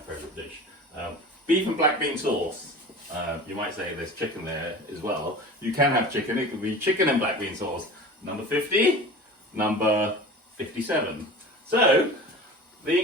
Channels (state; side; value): normal; both; correlation 0.37